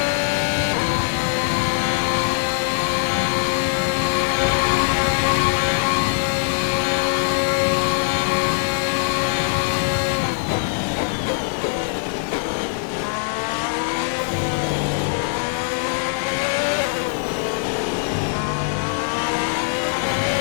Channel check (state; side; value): silent; right; 60 dB below the other